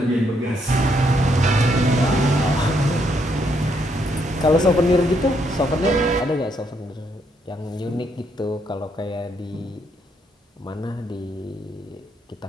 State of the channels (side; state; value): both; normal; correlation 0.74